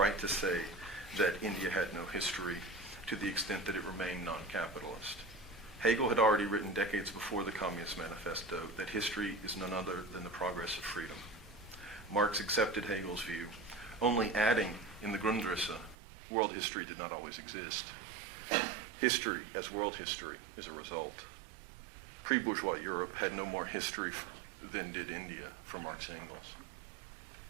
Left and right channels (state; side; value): drops out; left; at 16.0 s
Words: to say that India had no history to the extent that it remained non-capitalist. Hegel had already written decades before the Communist Manifesto that history is none other than the progress of freedom. Marx accepted Hegel's view, only adding in the Grundrisse, world history did not always exist. History, as world history, is a result. Pre-bourgeois Europe had no more history than did India for Marx and Engels.